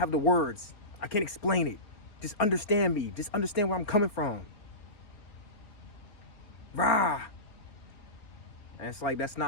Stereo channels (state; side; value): late; right; 4.3 ms